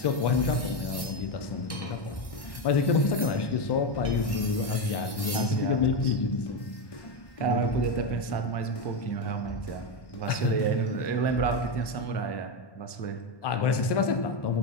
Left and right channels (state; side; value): late; right; 1.1 ms